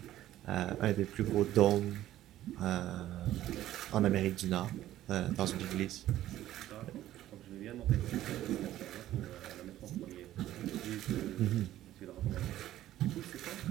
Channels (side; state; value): left; quieter; 13.6 dB